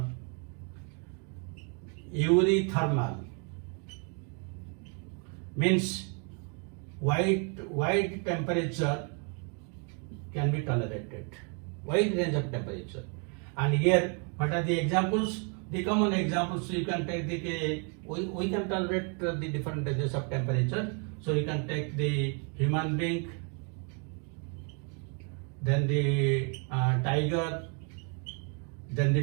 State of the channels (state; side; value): quieter; left; 37.8 dB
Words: Eurythermal means wide temperature can be tolerated, wide range of temperature. And here, what are the examples? The common examples, you can take we can tolerate the different ranges of temperature. So you can take the human being, then the tiger, then